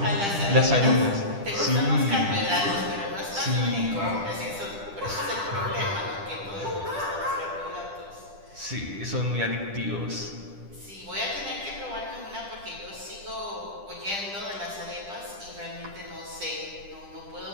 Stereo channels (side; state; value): left; late; 10 ms